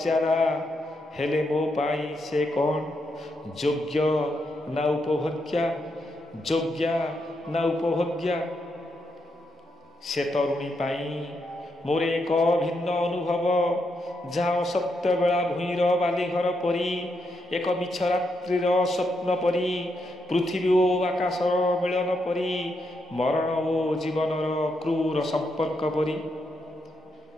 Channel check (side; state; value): both; normal; correlation 0.81